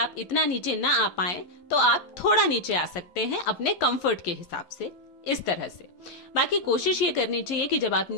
इतना नीचे ना आ पाए तो आप थोड़ा नीचे आ सकते हैं अपने कंफर्ट के हिसाब से इस तरह से। बाकी कोशिश ये करनी चाहिए कि जब आप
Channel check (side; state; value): right; late; 11 ms